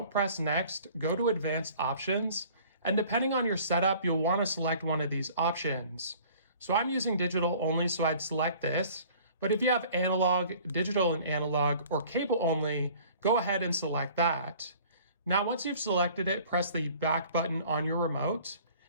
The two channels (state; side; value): inverted; both; correlation -0.50